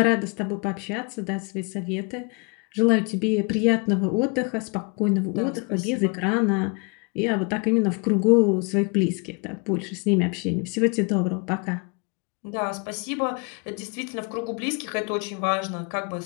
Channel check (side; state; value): right; quieter; 32.2 dB